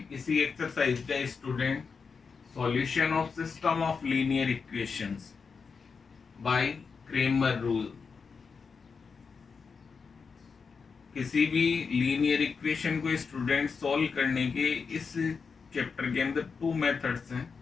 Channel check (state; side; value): quieter; right; 5.3 dB